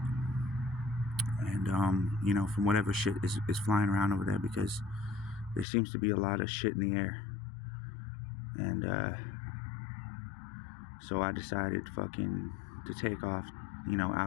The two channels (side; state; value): right; drops out; at 5.7 s